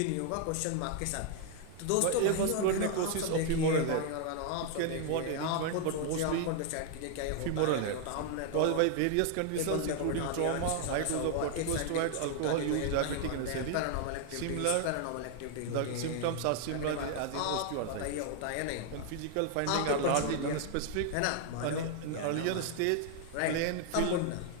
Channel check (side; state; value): both; different; correlation 0.00